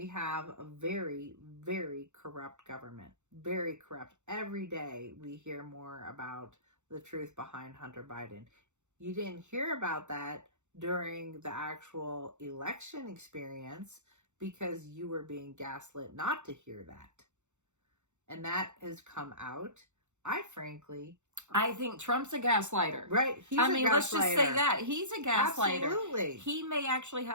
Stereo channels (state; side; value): late; left; 0.84 ms